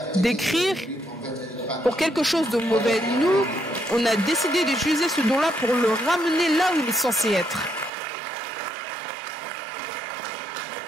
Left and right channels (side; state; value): left; drops out; at 7.9 s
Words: d'écrire pour quelque chose de mauvais. Nous, on a décidé d'utiliser ce don-là pour le ramener là où il est censé être.